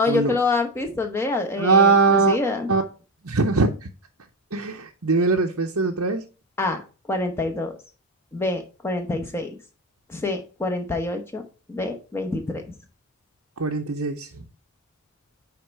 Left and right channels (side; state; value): both; normal; correlation 0.14